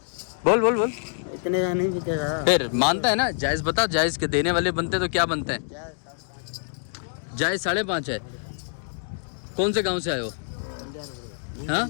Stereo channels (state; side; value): silent; right; digital silence